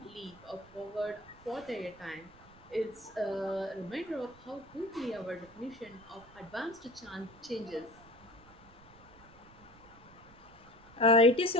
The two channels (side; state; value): right; noise; rumble, 23 dB below the sound